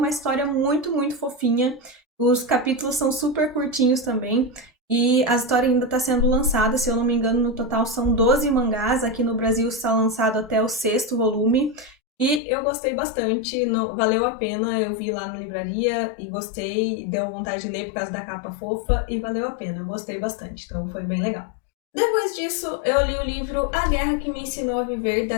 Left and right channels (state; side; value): drops out; right; at 12.4 s